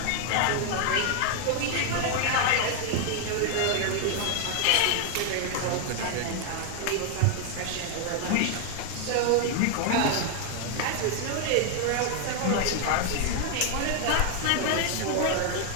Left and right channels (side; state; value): both; different; correlation 0.00